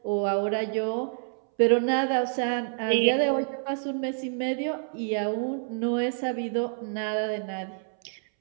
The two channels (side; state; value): left; silent; 60 dB below the other